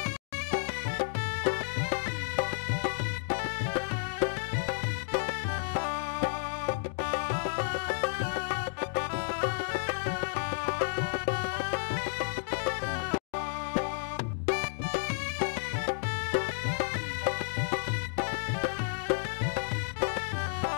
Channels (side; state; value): right; silent; digital silence